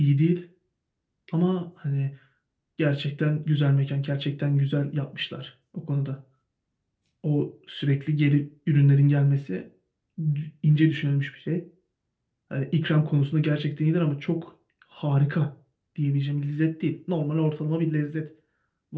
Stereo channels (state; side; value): identical; both; correlation 1.00